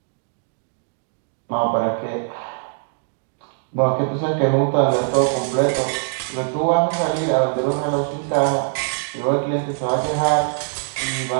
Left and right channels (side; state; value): left; silent; digital silence